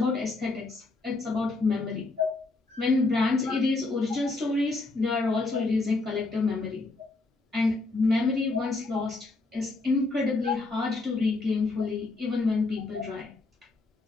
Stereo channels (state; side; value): quieter; right; 3.4 dB